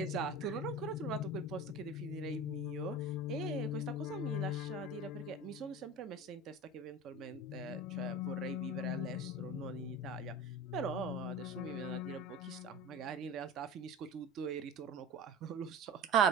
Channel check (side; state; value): both; normal; correlation 0.34